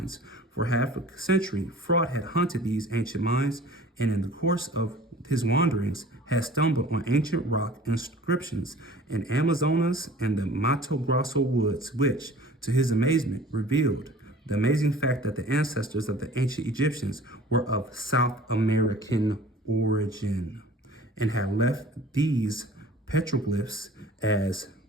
for half a century, Frot had hunted these ancient mines and in the course of his wanderings had stumbled on ancient rock inscriptions in Amazonas and the Mato Grosso woods, which, to his amazement, revealed the amazing fact that the ancestors of the ancient Egyptians were of South American origin and had left these petroglyphs as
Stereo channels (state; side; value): normal; both; correlation 0.46